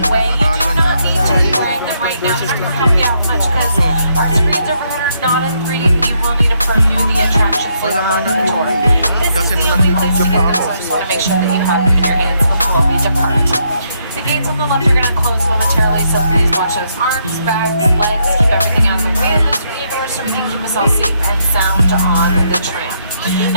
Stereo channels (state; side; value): inverted; both; correlation -0.75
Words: You do not need to be wearing them right now. They're not going to help you out much because our screens overhead are not in 3D, but you will need them for view the attractions later on in the tour. This is the only place to get them, so I just want to make sure that you have them in your hands before we depart. The gates on the left are going to close momentarily, so please watch those arms, backs, legs, keep everything out of the way of those screen doors so we can keep us all safe and sound on the tram.